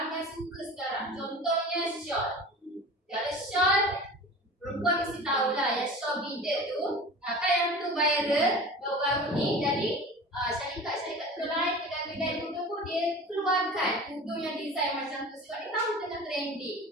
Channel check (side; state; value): both; normal; correlation 0.37